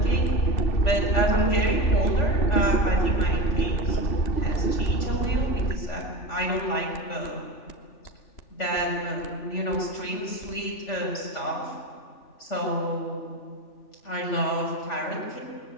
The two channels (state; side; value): late; right; 3.4 ms